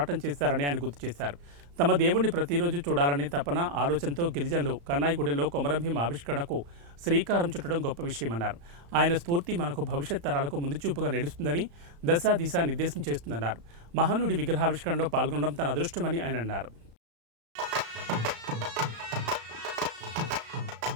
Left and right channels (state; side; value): late; left; 35 ms